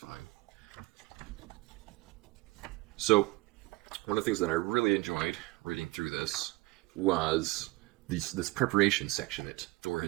So, one of the things that I really enjoyed reading through this was this preparation section that Thor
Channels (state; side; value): quieter; left; 21.7 dB